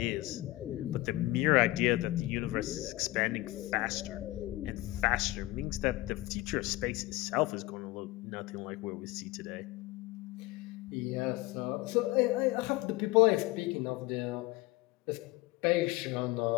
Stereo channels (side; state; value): right; quieter; 19.3 dB